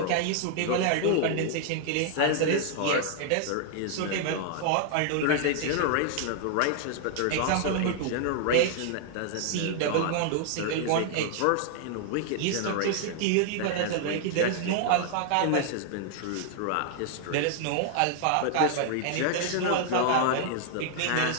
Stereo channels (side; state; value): both; different; correlation 0.00